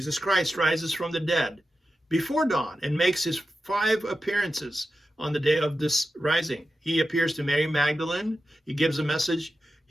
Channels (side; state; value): both; normal; correlation 0.91